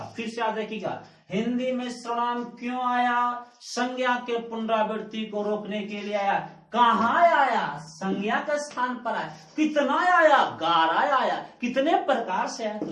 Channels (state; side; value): identical; both; correlation 1.00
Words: फिर से याद रखिएगा हिंदी में सर्वनाम क्यों आया, संज्ञा के पुनरावृत्ति को रोकने के लिए आया। कहाँ आया, संज्ञा के स्थान पर आया। कितना आया, 11 आया। कितने प्रकार से आया,